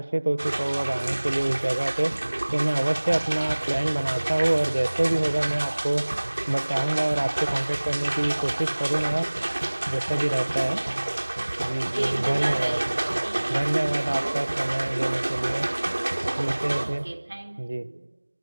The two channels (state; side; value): inverted; both; correlation -1.00